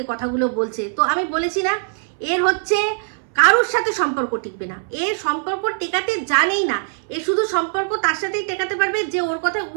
কথাগুলো বলছে। তো আমি বলেছি না, এর হচ্ছে কারোর সাথে সম্পর্ক টিকবে না, এর সম্পর্ক টেকাতে জানেই না। এ শুধু সম্পর্ক তার সাথেই টেকাতে পারবে যে ওর কথায়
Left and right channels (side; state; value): left; silent; 65 dB below the other